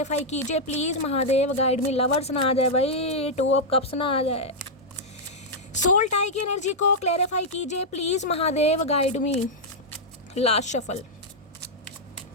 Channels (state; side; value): normal; both; correlation -0.05